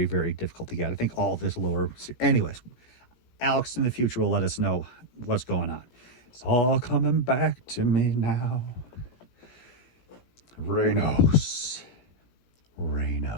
very difficult to get. I think all this lower. Anyways, Alex in the future will let us know what's going on. It's all coming back to me now. Reynos.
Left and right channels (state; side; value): late; right; 17 ms